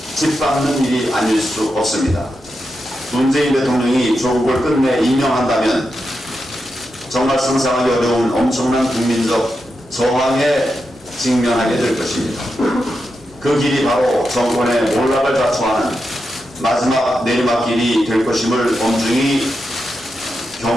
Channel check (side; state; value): both; normal; correlation 0.87